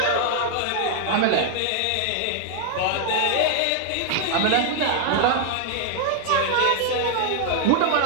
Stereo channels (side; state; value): both; different; correlation 0.00